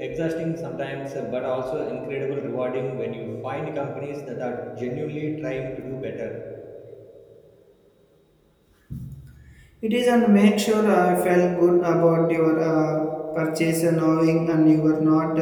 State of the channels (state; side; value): identical; both; correlation 1.00